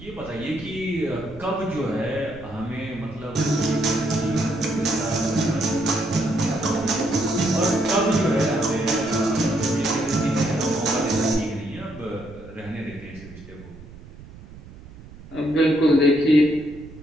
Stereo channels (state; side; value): noise; right; rumble, 18 dB below the sound